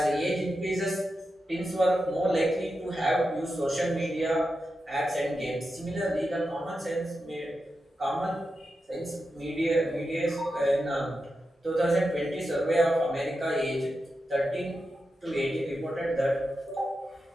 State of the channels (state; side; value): normal; both; correlation 0.89